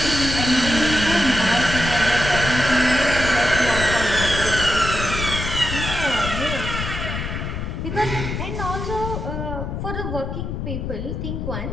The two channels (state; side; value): noise; left; rumble, 4 dB below the sound